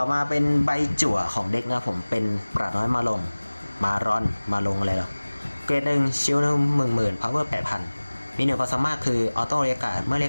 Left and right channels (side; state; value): both; inverted; correlation -1.00